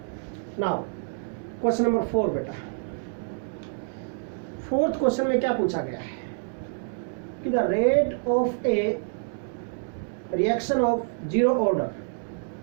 Now question number 4 बेटा। फोर्थ क्वेश्चन में क्या पूछा गया है कि the rate of A reaction of zero order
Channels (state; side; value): silent; left; digital silence